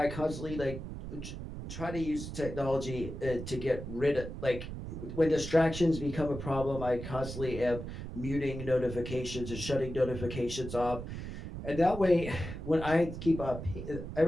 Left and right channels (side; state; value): right; noise; rumble, 8 dB below the sound